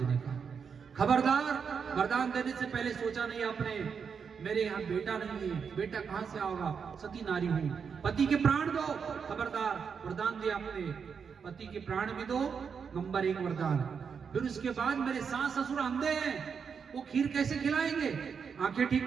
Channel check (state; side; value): quieter; left; 6.4 dB